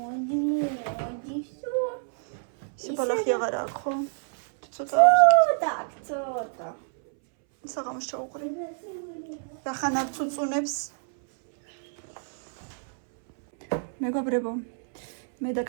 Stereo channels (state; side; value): silent; left; 60 dB below the other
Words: სიბალახი აღარ აქვს ხო? ცოტა. საღამოს ჩაუყრი. რახანარ წუწუნებს. მეგობრებო, მე და